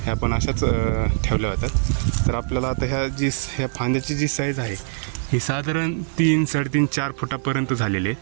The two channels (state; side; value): silent; left; digital silence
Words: ह्या पण अशाच ठेवल्या होत्या. तर आपल्याला आता ह्या फांद्याची जी साईज आहे ही साधारण 3, 3.5, 4 फुटापर्यंत झालेली